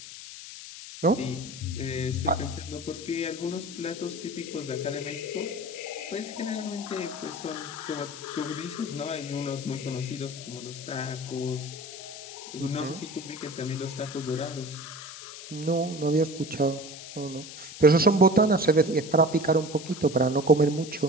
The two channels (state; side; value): noise; left; hiss, 12 dB below the sound